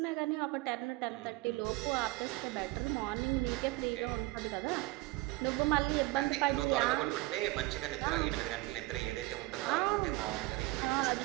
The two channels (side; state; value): left; quieter; 21.1 dB